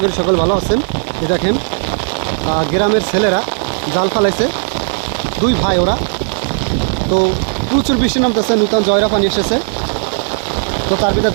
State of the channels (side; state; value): left; silent; digital silence